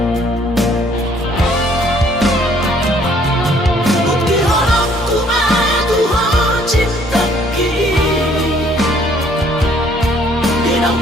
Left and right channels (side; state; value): both; normal; correlation 0.62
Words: bukti horokku madu ho cinta ki dinang